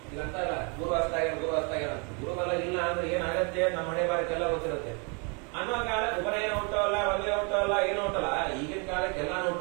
ಇದಂತಲ್ಲ ಗುರು ಗುರುಬಲ ಇಲ್ಲ ಅಂದ್ರೆ ಏನಾಗತ್ತೆ ನಮ್ಮ ಮನೆ ಬಾರಕ್ಕೆಲ್ಲ ಗೊತ್ತಿರುತ್ತೆ ಅನ್ನೋ ಕಾಲಕ್ಕೆ ಉಪನಯನ ಹುಟ್ಟವಲ್ಲ, ಮದುವೆ ಹುಟ್ಟವಲ್ಲ, ಏನು ಹುಟ್ಟಲ್ಲ. ಈಗಿನ ಕಾಲಕ್ಕೆ ಎಲ್ಲಾನು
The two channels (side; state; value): left; quieter; 33.7 dB